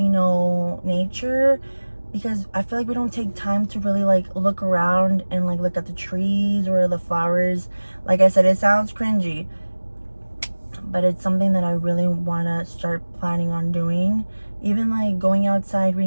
know, nature, because I feel like we don't take time to really like look around and like look at the trees or the flowers. Like I said, it sounds cringy, but it's something that I really want to start planning on doing. Even like going outside,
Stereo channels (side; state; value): both; inverted; correlation -1.00